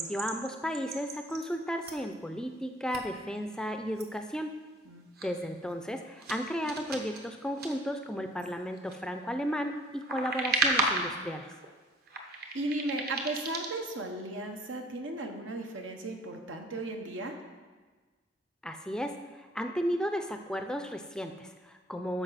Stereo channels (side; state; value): both; normal; correlation 0.56